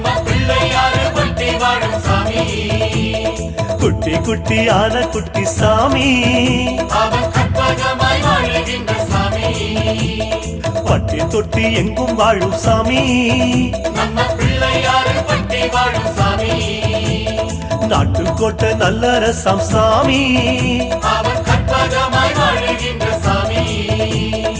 பிள்ளையாரு பட்டி வாழும் சாமி குட்டி குட்டி ஆன குட்டி சாமி அவன் கற்பகமாய் வாழுகின்ற சாமி பட்டி தொட்டி எங்கும் வாழும் சாமி நம்ம பிள்ளையாரு பட்டி வாழும் சாமி நாட்டுக்கோட்டை நல்லரசம் சாமி அவன் கற்பகமாய் வாழுகின்ற சாமி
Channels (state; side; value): identical; both; correlation 1.00